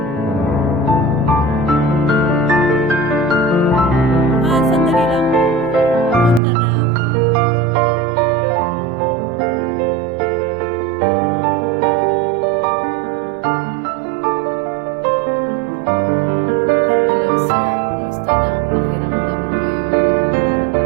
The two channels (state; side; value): drops out; left; at 6.4 s